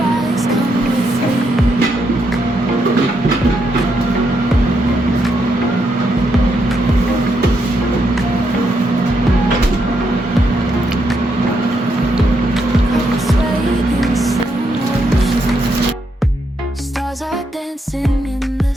Stars are dancing in the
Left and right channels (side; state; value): both; normal; correlation 0.79